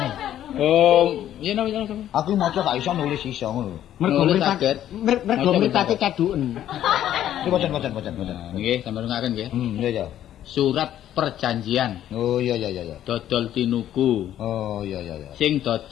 Oh, iya no. Aku maca gak iso nulis iso ngono. Mergo mripate kaduken. Iki maca. Nggih, sampeyan ngaken nggih. Iya. Surat perjanjian. Oh iya. Dodol tinuku. Oh iya. Sing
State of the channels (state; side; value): quieter; right; 11.6 dB